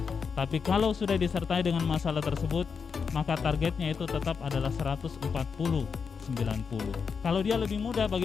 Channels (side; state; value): right; quieter; 5.8 dB